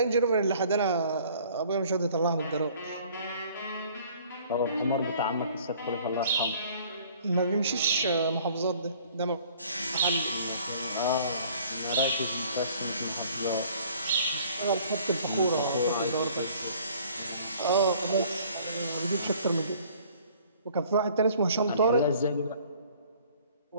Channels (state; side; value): inverted; both; correlation -0.55